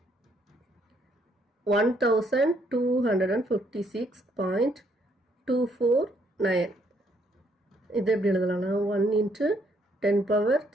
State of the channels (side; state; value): both; normal; correlation 0.70